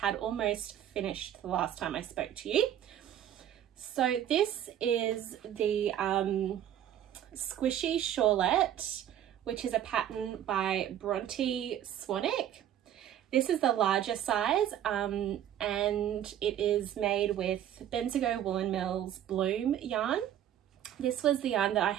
almost finished the last time I spoke to you. So this is the Squishy Shawlette, which is a pattern by Bronte Swannick. This is the larger size and it is made with Bendigo Woollen Mills Bloom yarn. This was the yarn that I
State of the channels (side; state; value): left; quieter; 10.9 dB